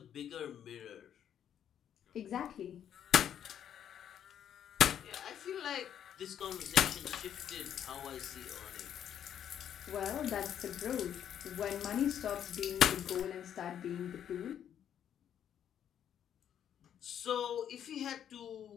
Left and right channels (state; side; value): quieter; right; 9.5 dB